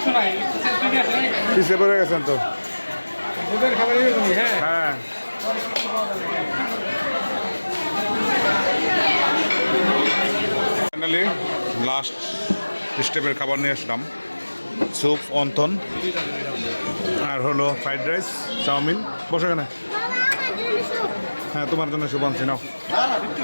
পিছিয়ে পড়ে গেছেন তো। হ্যাঁ ফাইনালি লাস্ট স্টেপের খাবার নিয়ে আসলাম। স্যুপ, অন্থন, আর হলো ফ্রাইড রাইস, চাউমিন। বসে কেন? হ্যাঁ, তোমার জন্য স্যুপ আনছি, নাও।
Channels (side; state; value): both; inverted; correlation -1.00